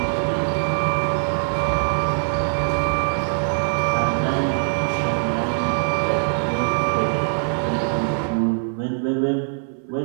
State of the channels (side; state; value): left; silent; 64 dB below the other